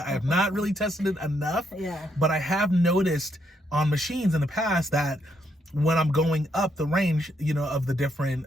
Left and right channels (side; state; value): both; normal; correlation 0.75